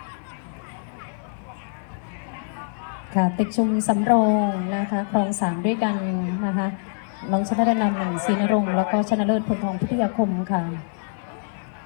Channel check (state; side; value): silent; right; 60 dB below the other